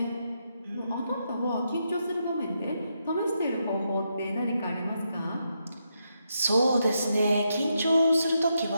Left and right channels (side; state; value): both; inverted; correlation -0.82